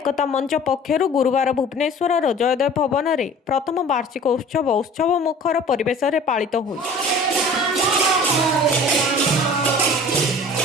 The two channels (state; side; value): normal; both; correlation 0.45